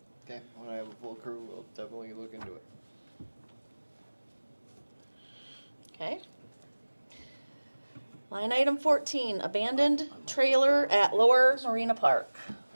Okay, when I have a full crew, we'll definitely look into it. Okay. Line item 14, abandoned trailer at Lower Marina Park.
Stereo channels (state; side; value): inverted; both; correlation -1.00